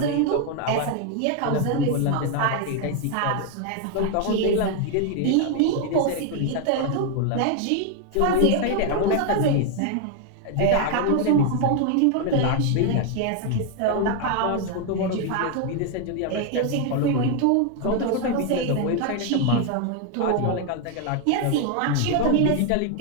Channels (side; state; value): both; different; correlation 0.00